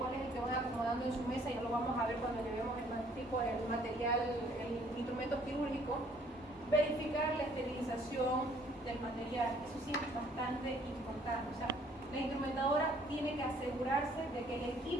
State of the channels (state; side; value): normal; both; correlation 0.61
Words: cuál es el que van acomodando en su mesa, ya lo vamos a ver cuando llevemos el material, el instrumento quirúrgico. Verificar la esterilización del material, eso sí es bastante importante. O sea, la instrumentadora tiene que asegurarse de que el